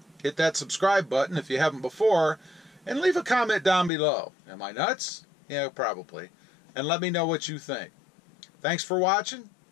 hit that subscribe button if you haven't before, and leave a comment down below. Am I nuts? Yeah, probably. And let me know what you think. Thanks for watching,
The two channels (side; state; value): right; drops out; at 3.9 s